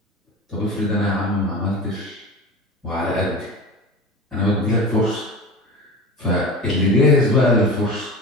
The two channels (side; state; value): both; normal; correlation 0.31